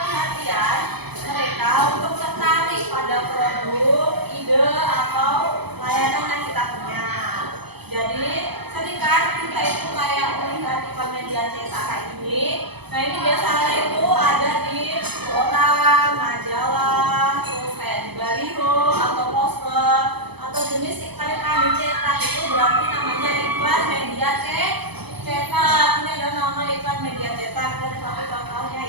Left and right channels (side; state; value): left; late; 0.98 ms